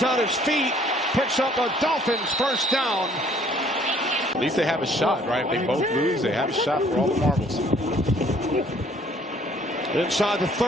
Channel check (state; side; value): normal; both; correlation 0.59